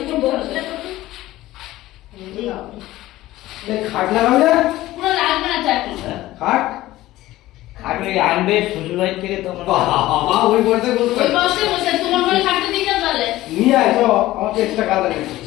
বসে খাট লাগাবো না পুরো লাগবে না চাকরি খাট খাট ওই আনবে শ্বশুরবাড়ি থেকে তো বাবা ওই বসে বলতে ওই বসে বসে তোমার ঘরে খাটতে দিয়ে যাও তাহলে নিয়ে আয় তো আমাকে এক্সট্রা কাজ লাগে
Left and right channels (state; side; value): quieter; right; 16.3 dB